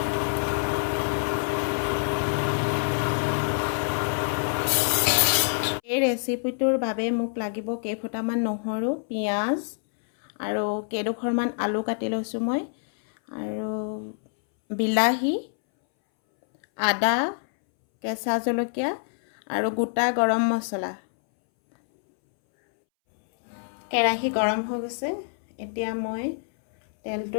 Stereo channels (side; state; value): right; silent; 61 dB below the other